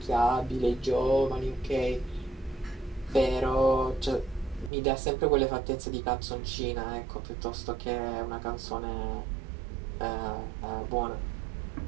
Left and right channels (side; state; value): left; drops out; at 4.7 s